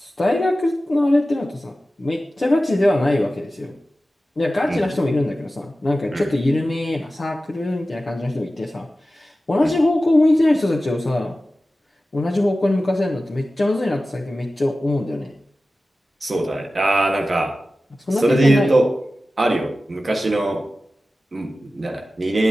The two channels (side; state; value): both; normal; correlation 0.95